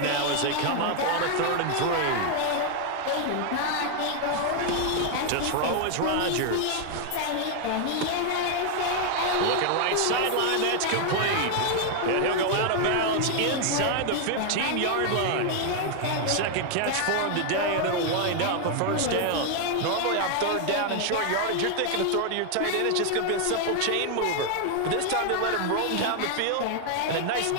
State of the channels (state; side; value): different; both; correlation 0.00